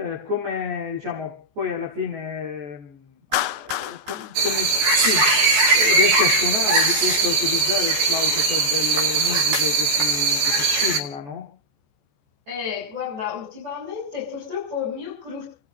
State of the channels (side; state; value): left; late; 14 ms